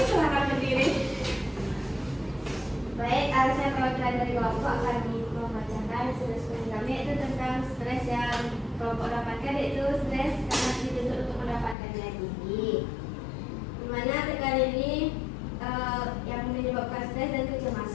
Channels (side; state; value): right; drops out; at 11.8 s